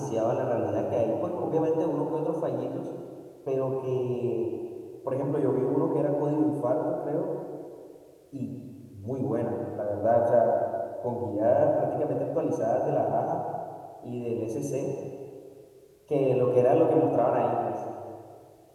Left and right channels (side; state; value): both; identical; correlation 1.00